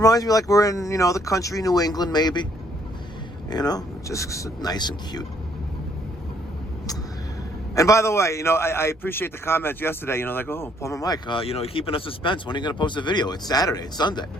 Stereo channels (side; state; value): both; normal; correlation 0.66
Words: me like we're in, the country, New England, maybe. Just nice and cute. And by the way, I appreciate the comments yesterday, oh, Plumber Mike, you're keeping us suspense. When are you going to post a video? It's Saturday. It's Sunday.